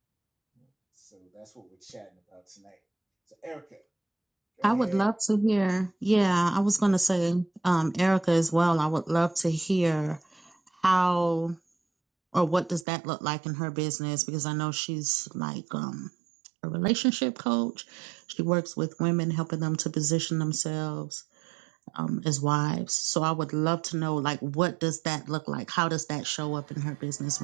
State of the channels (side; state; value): left; drops out; at 12.9 s